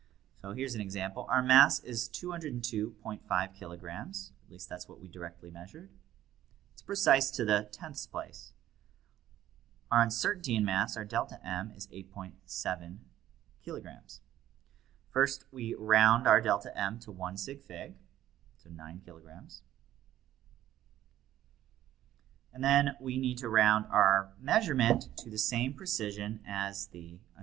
So here's an example. Our mass is 202.5 kilograms. At least that's what we directly measured. It's precise to the 10th place. Our uncertainty in mass, our delta M, is 8.7 kilograms. First, we round our delta M to 1 sig fig, so 9 kilograms. And then we need to round our measurement to the same precision as the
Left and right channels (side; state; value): left; quieter; 12.9 dB